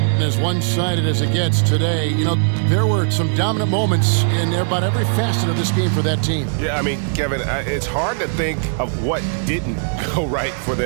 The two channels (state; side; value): silent; left; digital silence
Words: And as one-sided as it gets today, you know, there were some dominant moments in about every facet of this game for that team. Yeah, I mean, Kevin, it's hard to think of what didn't go right for